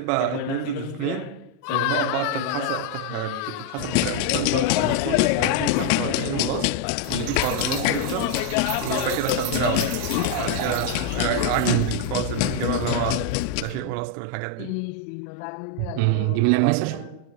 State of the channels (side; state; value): both; different; correlation 0.00